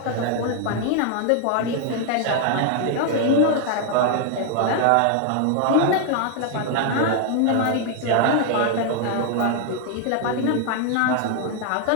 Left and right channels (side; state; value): both; different; correlation 0.00